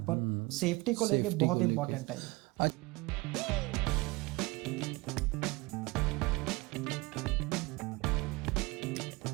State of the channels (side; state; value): left; quieter; 23.6 dB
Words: पर सेफ्टी को लेके बहुत इंपॉर्टेंट है ये।